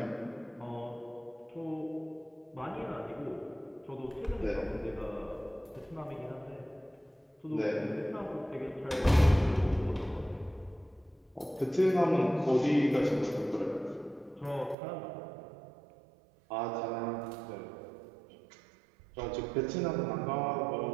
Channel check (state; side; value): drops out; left; at 14.8 s